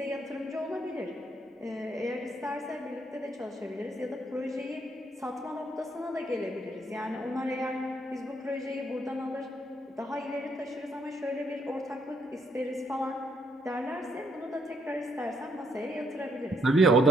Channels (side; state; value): both; normal; correlation 0.71